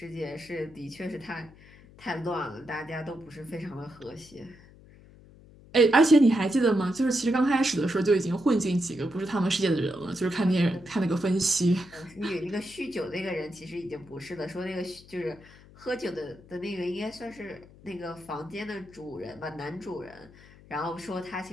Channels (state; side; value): noise; left; hum, 23 dB below the sound